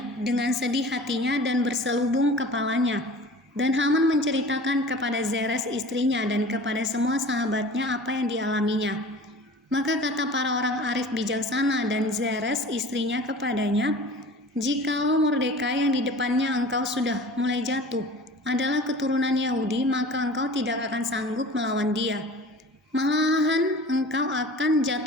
dengan sedih hatinya dan berselubung kepalanya. Dan Haman menceritakan kepada Zeres istrinya dan kepada semua sahabatnya apa yang dialaminya. Maka kata para orang arif bijaksana dan Zeres istrinya kepadanya, jikalau Mordekai yang di depannya engkau sudah mulai jatuh adalah keturunan Yahudi, maka engkau tidak akan sanggup melawan dia. Malahan engkau akan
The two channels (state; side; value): normal; both; correlation 0.41